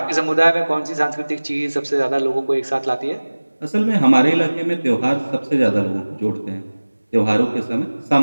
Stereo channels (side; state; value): both; inverted; correlation -1.00